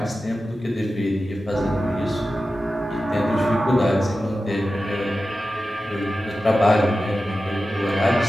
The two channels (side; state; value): both; normal; correlation 0.93